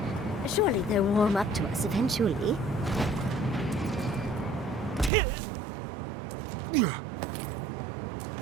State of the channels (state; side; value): drops out; left; at 5.1 s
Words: Surely they'll warm up to us eventually.